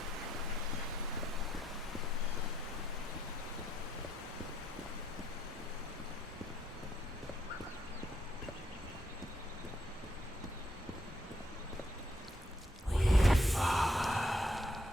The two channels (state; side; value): normal; both; correlation 0.75